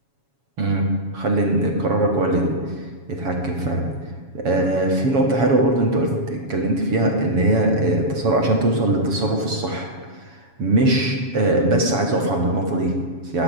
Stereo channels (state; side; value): late; left; 7.2 ms